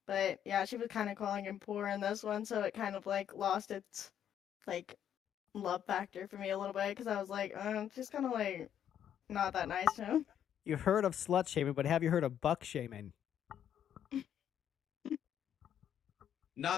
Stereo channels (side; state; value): right; quieter; 9.7 dB